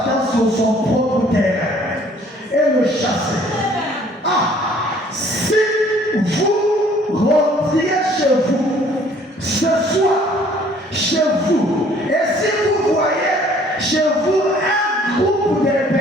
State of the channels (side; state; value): both; normal; correlation 0.57